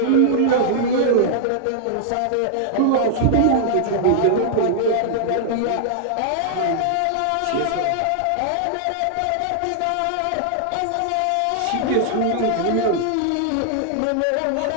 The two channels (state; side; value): different; both; correlation -0.01